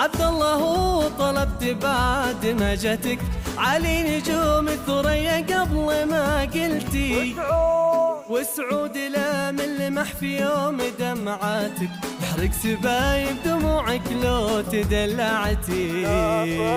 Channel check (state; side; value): identical; both; correlation 1.00